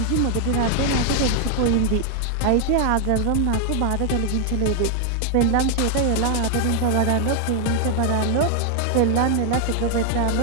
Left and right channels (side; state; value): both; different; correlation 0.00